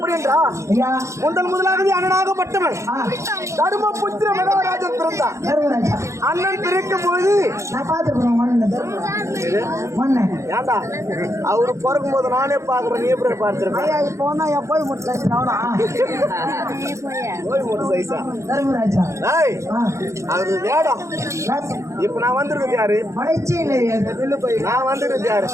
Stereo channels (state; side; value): late; left; 0.14 ms